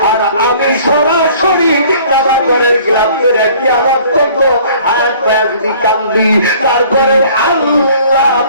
আর আমি সরাসরি বাবা ঘরের গ্লাভ করে কিয়ামত পর্যন্ত হাত পায়ে যদি কান্দি তারপরে আল্লাহ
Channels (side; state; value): both; inverted; correlation -0.53